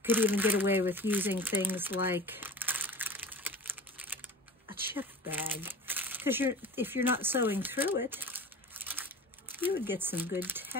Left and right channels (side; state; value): both; normal; correlation 0.36